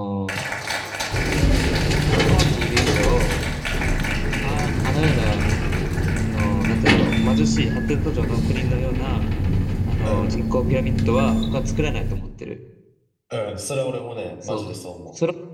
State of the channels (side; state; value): both; identical; correlation 1.00